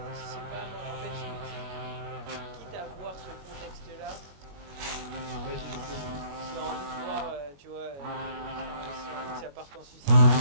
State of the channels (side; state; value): left; late; 21 ms